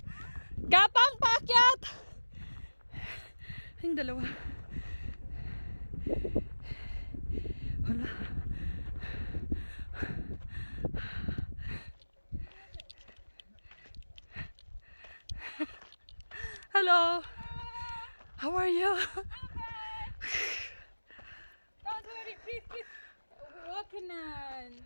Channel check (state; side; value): inverted; both; correlation -1.00